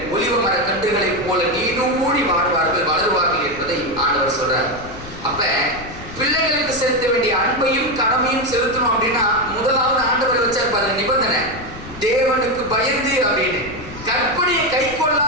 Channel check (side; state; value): left; noise; rumble, 15 dB below the sound